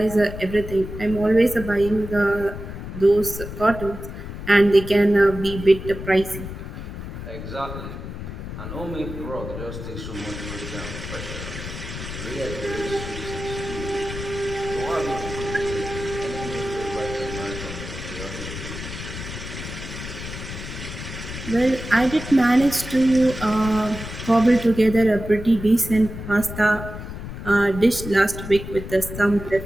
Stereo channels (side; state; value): left; noise; rumble, 9 dB below the sound